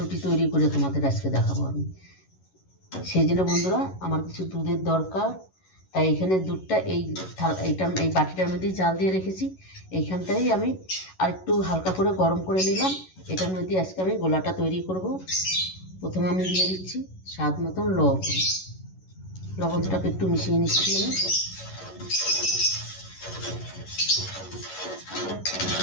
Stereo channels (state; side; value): late; right; 11 ms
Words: তৈরি করে তোমাদের আজকে দেখাবো আমি। সেই জন্য বন্ধুরা আমার কিছু দুধের দরকার, তাই এখানে দুধটা এই বাটিটার মধ্যেই জাল দিয়ে রেখেছি। এইখানটাই আমি আর একটু হালকা করে গরম করে নিলাম। এটার মধ্যে আজকে আমি গোলাটা তৈরি করব। প্রথমে আমি দিয়ে দিচ্ছি স্বাদ মতন লবণটাকে একটু মিশিয়ে নিচ্ছি আমি।